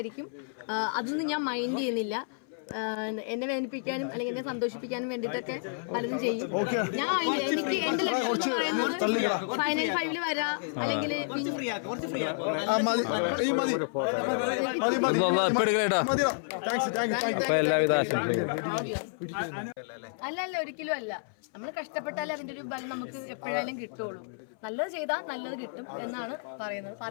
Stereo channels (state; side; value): silent; right; 57 dB below the other